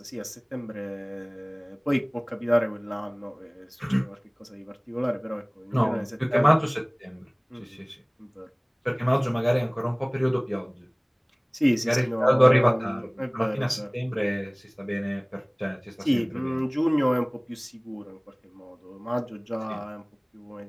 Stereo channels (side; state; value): both; identical; correlation 1.00